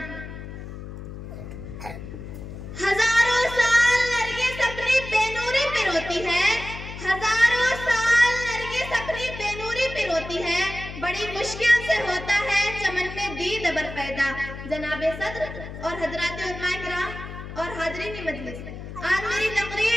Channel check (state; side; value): noise; left; hum, 11 dB below the sound